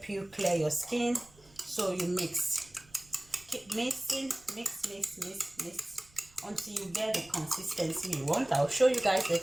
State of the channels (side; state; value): right; noise; rumble, 27 dB below the sound